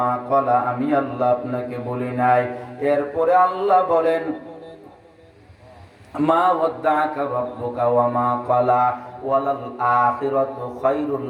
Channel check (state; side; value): identical; both; correlation 1.00